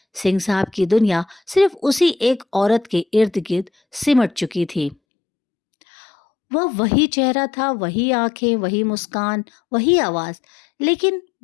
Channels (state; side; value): drops out; right; at 5.0 s